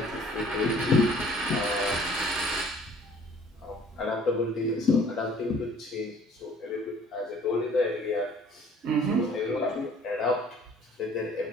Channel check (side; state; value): both; normal; correlation 0.54